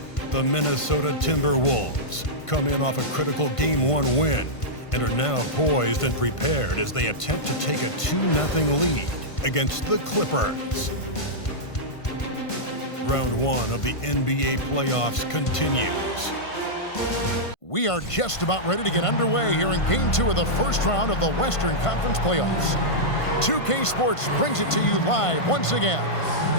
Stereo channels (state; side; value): late; right; 1.5 ms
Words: The Minnesota Timberwolves come in off a critical Game 1 win and are now poised and prepared as they attempt to take a 2-0 lead against the Clippers. Round 1 of the NBA playoffs continues. We are just about ready to get underway here in Game 2 of the first round of the Western Conference playoffs. 2K Sports brings it to you live once again.